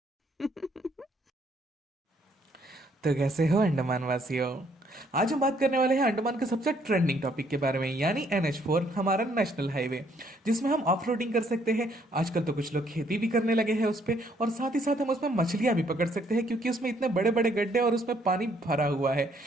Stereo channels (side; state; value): both; normal; correlation 0.67